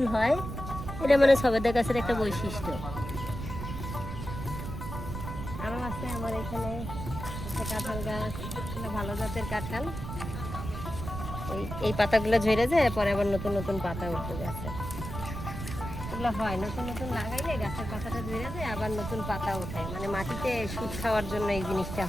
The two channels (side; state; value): right; noise; rumble, 7 dB below the sound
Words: হয়, এটা মানে সবেদা গাছের একটা বৈশিষ্ট্য। আরও আছে আমার এখানে একটা কাঁঠাল গাছ, ভালো জাতের কাঁঠাল। এই পাতাগুলো ঝরে যায়, পরে আবার নতুন নতুন পাতা উঠে গেছে। এগুলো হয় নতুন নতুন লাগাইলে গাছের পাতাটা ঝরে যায়, আবার নতুন পাতা ওঠে, মানে মাটিতে সুদ খাওয়ার জন্য এই জিনিসটা